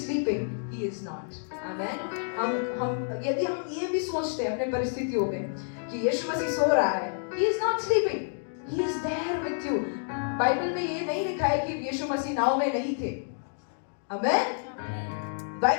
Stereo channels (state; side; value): silent; right; digital silence